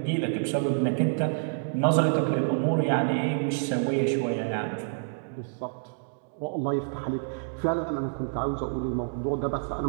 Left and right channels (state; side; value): silent; left; digital silence